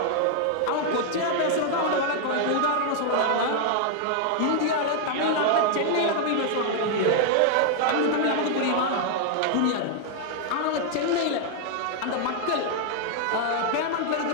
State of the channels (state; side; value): different; both; correlation 0.00